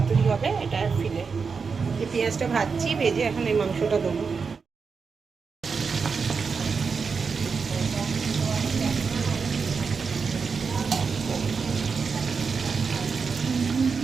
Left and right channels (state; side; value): quieter; left; 5.3 dB